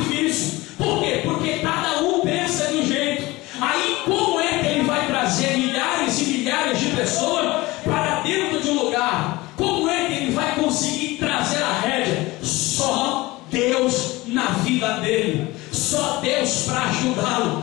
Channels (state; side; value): quieter; right; 20.6 dB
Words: Por quê? Porque cada um pensa de um jeito. Aí, como é que ele vai trazer milhares e milhares de pessoas para dentro de um lugar? Como é que ele vai conseguir trazer a rédea? Só Deus na vida dele. Só Deus para